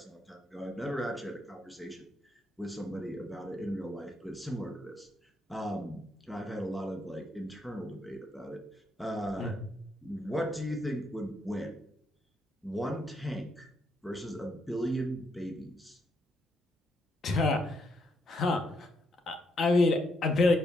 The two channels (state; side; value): normal; both; correlation 0.77